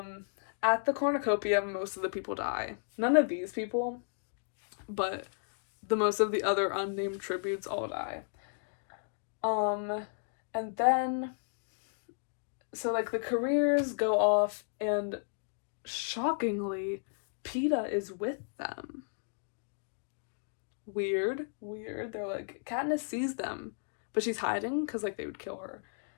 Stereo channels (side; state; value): right; silent; digital silence